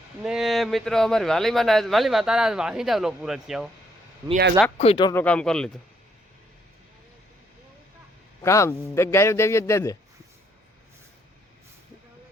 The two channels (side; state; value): both; normal; correlation 0.71